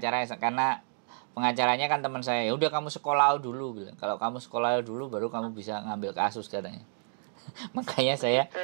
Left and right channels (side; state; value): left; silent; digital silence